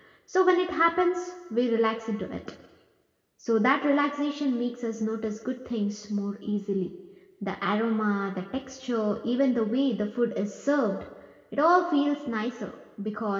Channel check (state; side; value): identical; both; correlation 1.00